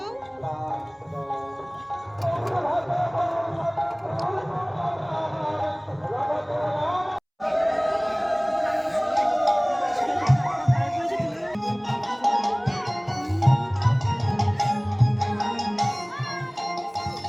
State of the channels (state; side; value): identical; both; correlation 1.00